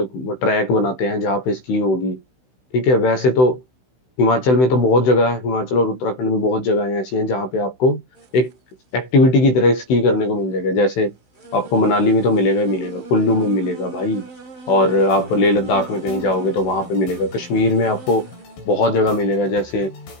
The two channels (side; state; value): right; late; 16 ms